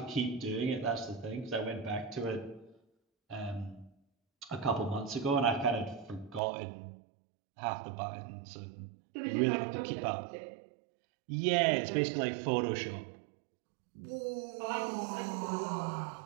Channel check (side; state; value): left; drops out; at 6.4 s